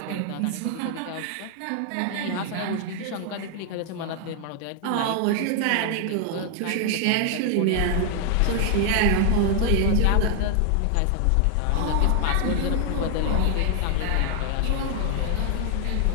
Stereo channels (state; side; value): different; both; correlation 0.00